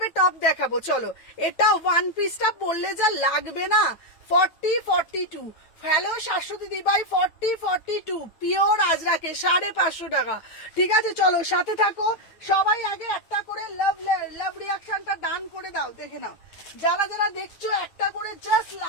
টপ দেখাবো। চলো, এটা ওয়ান পিসটা বললে যা লাগবে না। 40, 42। হ্যালো শাশ্বতী দিবাই, 40, 42 পিওর আজরাকে 550 টাকা, ঠিক আছে? চলো সাথে থাকো। সবাই আগে একটা করে লাভ রিঅ্যাকশনটা ডান করে দাও, দেখে নাও। যারা যারা দেখছো একটা করে জাস্ট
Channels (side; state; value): right; late; 9.1 ms